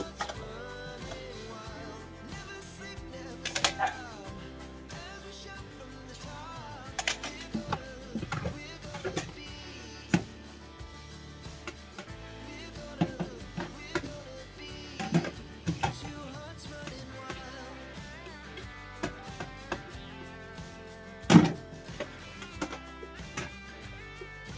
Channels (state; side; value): identical; both; correlation 1.00